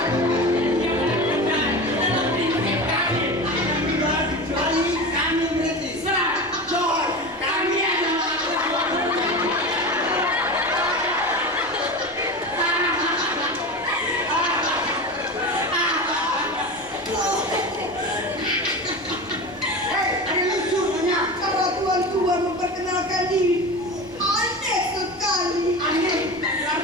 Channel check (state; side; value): noise; left; rumble, 27 dB below the sound